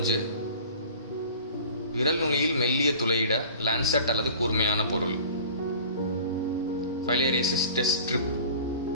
விரல் நுனியில் மெல்லிய துளையிட லான்செட் அல்லது கூர்மையான பொருள், ஃபைலேரியாசிஸ் டெஸ்ட் ஸ்ட்ரிப்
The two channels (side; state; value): both; inverted; correlation -0.43